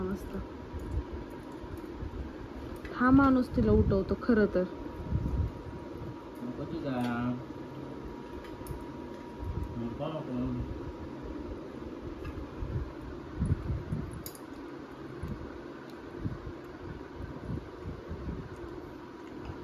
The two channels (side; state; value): both; identical; correlation 1.00